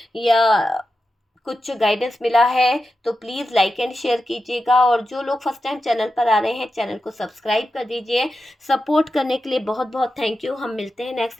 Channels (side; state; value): both; normal; correlation 0.90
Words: या कुछ गाइडेंस मिला है तो प्लीज़ लाइक एंड शेयर कीजिएगा। और जो लोग फर्स्ट टाइम चैनल पर आ रहे हैं, चैनल को सब्सक्राइब कर दीजिए। सपोर्ट करने के लिए बहुत बहुत थैंक यू। हम मिलते हैं नेक्स्ट